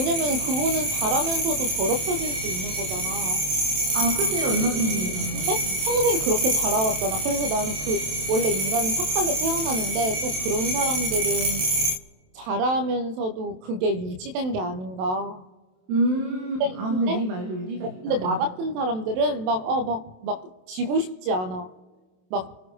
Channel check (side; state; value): left; late; 27 ms